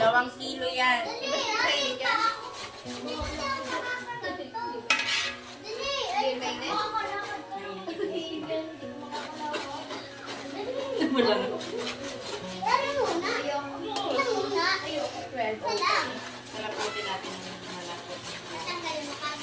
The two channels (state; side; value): identical; both; correlation 1.00